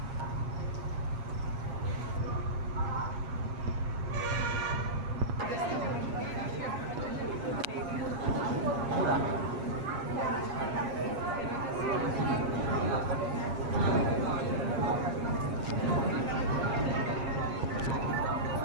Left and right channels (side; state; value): left; late; 8.4 ms